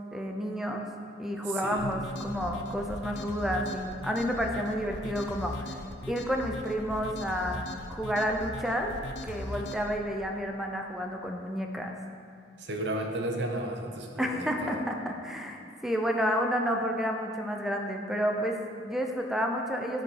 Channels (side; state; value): both; normal; correlation 0.64